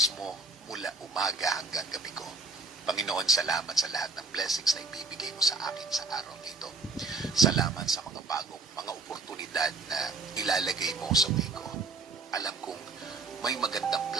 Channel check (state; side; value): quieter; left; 3.8 dB